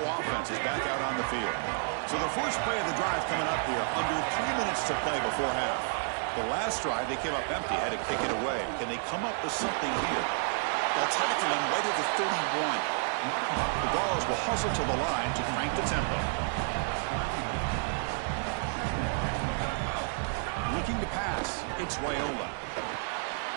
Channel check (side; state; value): left; silent; 57 dB below the other